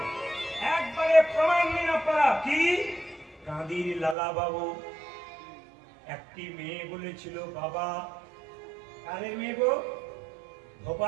একবারে প্রমাণ নিন আপনারা। কি? কাঁদির লালা বাবু একটি মেয়ে বলেছিল, বাবা, কারের মেয়ে গো,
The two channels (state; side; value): drops out; left; at 4.2 s